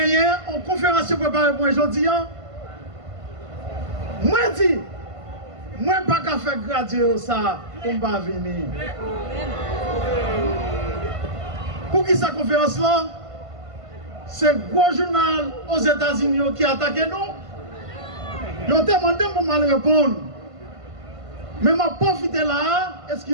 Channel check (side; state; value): left; late; 1.5 ms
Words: en conférence préparée pour aujourd'hui. Moi dis, moi pas qu'à faire graduer ça pour ne pas venir. Pour qui cette conférence là? C'est un gros journal aux États-Unis qui attaque nous. Ils ont demandé pour mal répondre. Mais je profite là,